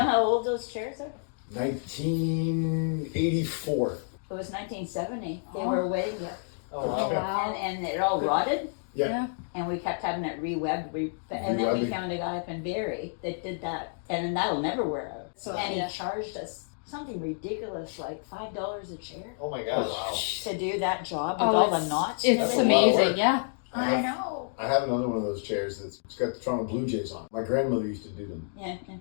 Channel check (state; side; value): silent; right; digital silence